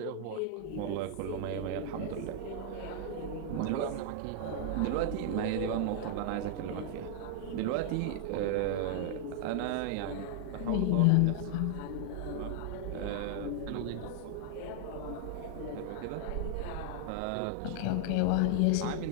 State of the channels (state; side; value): different; both; correlation 0.00